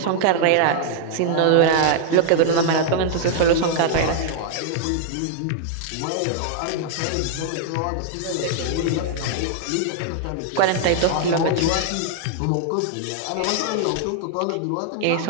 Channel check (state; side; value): different; both; correlation -0.01